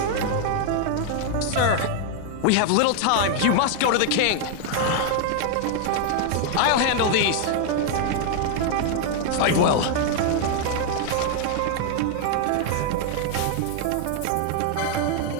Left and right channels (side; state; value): both; different; correlation 0.00